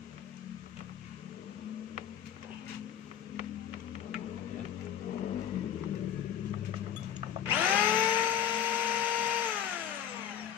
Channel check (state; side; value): quieter; right; 9.6 dB